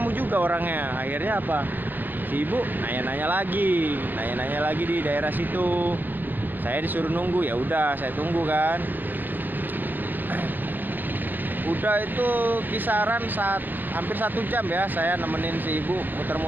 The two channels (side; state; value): left; late; 0.088 ms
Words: juga orangnya. Akhirnya apa, si ibu nanya-nanya lagi di daerah situ. Saya disuruh nunggu, ya udah saya tunggu kan. Udah itu kisaran saat hampir 1 jam ya saya nemenin si ibu